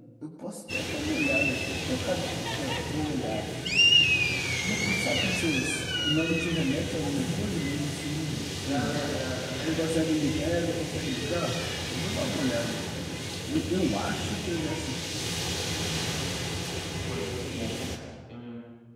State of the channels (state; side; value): identical; both; correlation 1.00